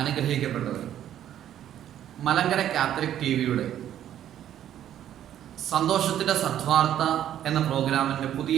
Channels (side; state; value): left; quieter; 11.1 dB